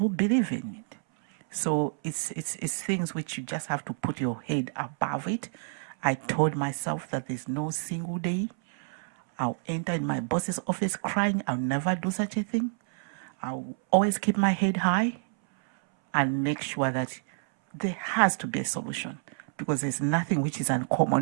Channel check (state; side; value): silent; left; 59 dB below the other